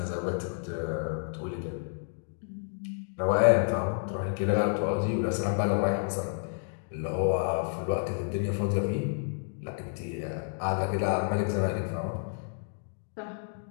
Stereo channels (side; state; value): right; silent; digital silence